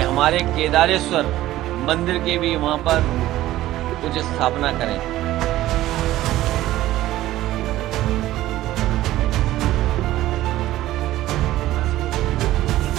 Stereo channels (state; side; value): quieter; left; 15.1 dB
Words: हमारे केदारेश्वर मंदिर के भी वहां पर कुछ स्थापना करें।